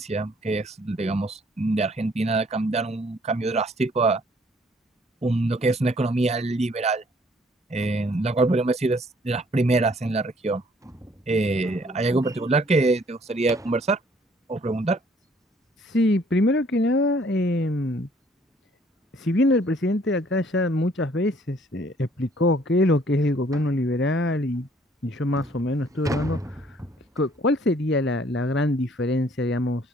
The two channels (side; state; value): both; normal; correlation 0.61